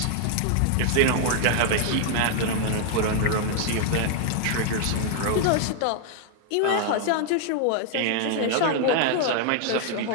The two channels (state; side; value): different; both; correlation 0.00